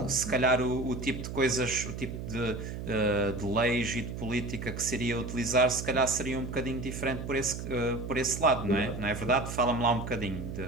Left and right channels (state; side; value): noise; right; hum, 7 dB below the sound